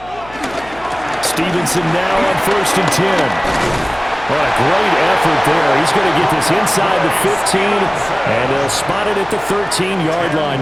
Stevenson now on 1st and 10. What a great effort there. He's going to get this inside the 15, and they'll spot it at the 13-yard line.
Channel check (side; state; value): left; noise; hum, 20 dB below the sound